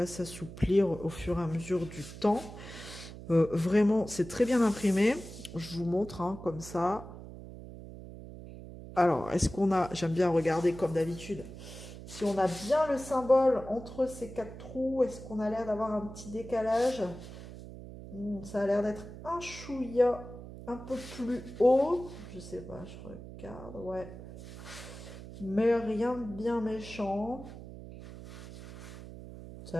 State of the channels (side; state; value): right; noise; hum, 13 dB below the sound